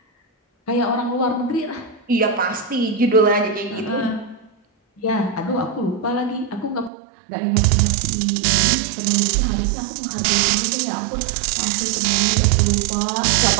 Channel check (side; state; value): left; drops out; at 6.9 s